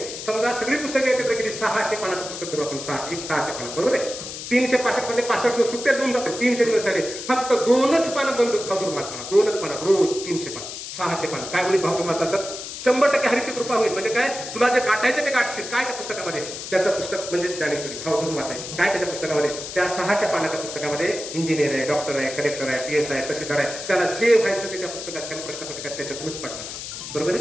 समजा सगळी पुस्तकं एकत्र केली 600 पानाचं पुस्तक करू आपण 600 पानं बरोबर आहे. 365 मध्ये 65 सुट्ट्या 2 टाकले 300 दिवस झाले फक्त 2च पानं बंद भाव वाचणार 2च पानं रोज 300 पानं 600 पानं. काय बोली भाव वाचला तर 100% हरीची कृपा होईल. म्हणजे काय तुला जे गाठायचं ते गाठशील काय त्या पुस्तकामध्ये त्याचं पुस्तक म्हणजे ज्ञानेश्वरी भाव धरून वाचायचं काय त्याच्या पुस्तकामध्ये त्या 600 पानाच्या पुस्तकामध्ये इंजिनियर आहे डॉक्टर आहे कलेक्टर आहे PS आहे तहसीलदार आहे त्याला जे व्हायचं ते त्या पुस्तकात त्याला प्रश्नपत्रिकात त्याच्यातूनच पडणार बरोबर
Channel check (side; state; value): left; noise; hiss, 9 dB below the sound